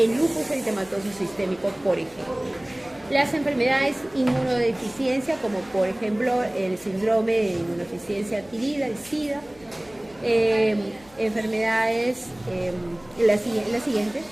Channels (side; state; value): left; noise; hum, 26 dB below the sound